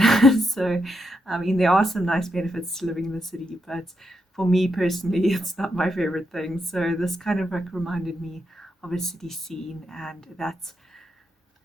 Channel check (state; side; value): normal; both; correlation 0.82